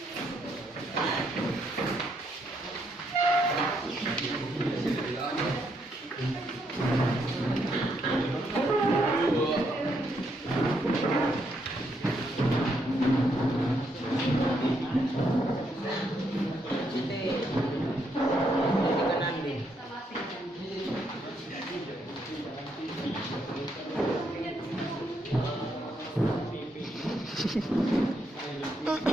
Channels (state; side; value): normal; both; correlation 0.76